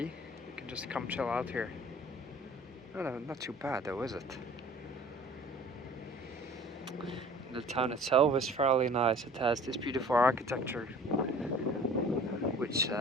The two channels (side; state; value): both; normal; correlation 0.47